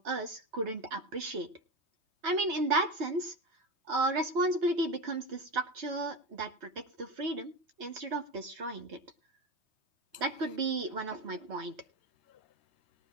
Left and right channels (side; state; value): left; late; 3.2 ms